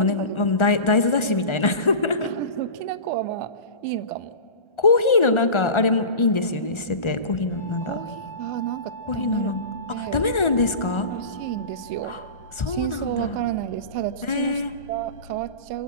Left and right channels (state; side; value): late; right; 1.4 ms